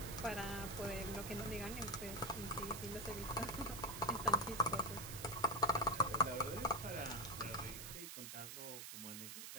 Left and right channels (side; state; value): right; noise; hiss, 8 dB below the sound